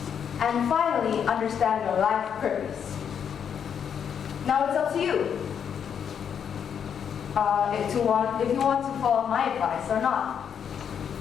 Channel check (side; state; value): right; quieter; 7.9 dB